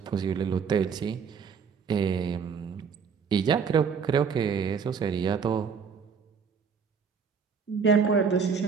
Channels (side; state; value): left; quieter; 6.1 dB